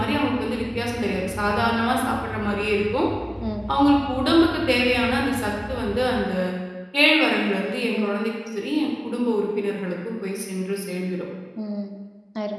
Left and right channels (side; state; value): both; identical; correlation 1.00